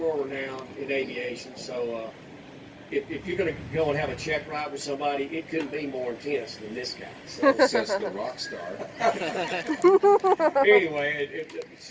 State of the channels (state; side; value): identical; both; correlation 1.00